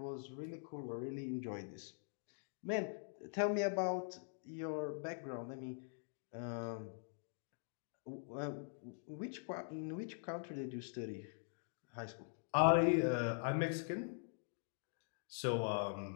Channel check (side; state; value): right; silent; digital silence